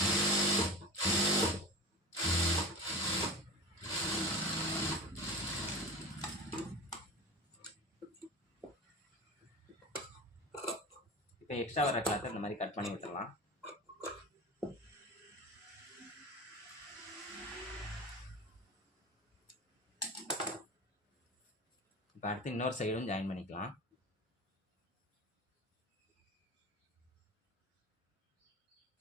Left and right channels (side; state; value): both; normal; correlation 0.31